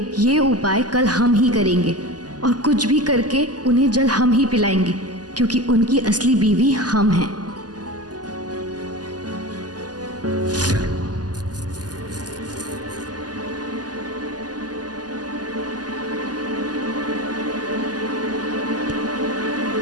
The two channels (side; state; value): left; late; 0.69 ms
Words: ये उपाय कल हम ही करेंगे और कुछ भी करके उन्हें जल हम ही पिलाएंगे, क्योंकि उनकी असली बीवी हम हैं।